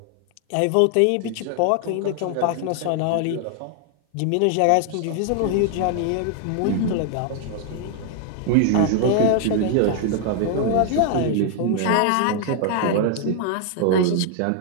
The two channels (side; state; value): both; different; correlation 0.00